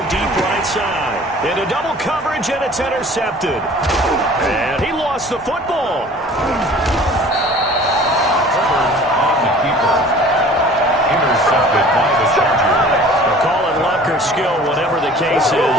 deep right side. Into double coverage, and it's intercepted. And he lost the football. Intercepted by the Chargers. They'll call it luck or skill, whatever the case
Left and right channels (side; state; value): both; normal; correlation 0.47